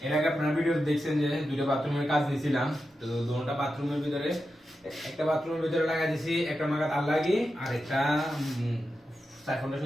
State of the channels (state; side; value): normal; both; correlation 0.90